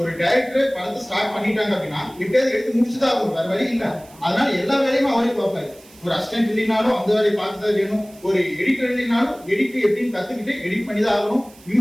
டைரக்டர் படத்தை ஸ்டார்ட் பண்ணிட்டாங்க அப்படின்னா எப்படியாவது எடுத்து முடிச்சுதான் ஆகும், வேற வழி இல்லை. அதனால எல்லா வேலையுமே அவரே பார்ப்பாரு. ஒரு அசிஸ்டன்ட் இல்லைனாலும் அந்த வேலையை பார்த்துதான் வேணும். ஒரு எடிட்டர் இல்லைனாலும் எடிட் எப்படின்னு கத்துக்கிட்டு எடிட் பண்ணி தான் ஆகணும்.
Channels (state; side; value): noise; right; hiss, 25 dB below the sound